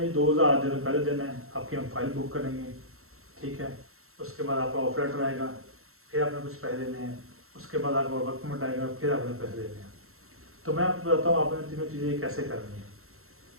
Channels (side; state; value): left; late; 0.62 ms